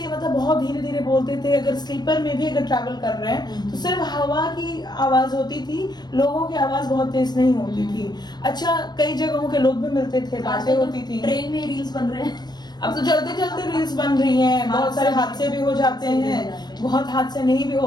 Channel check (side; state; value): right; late; 0.20 ms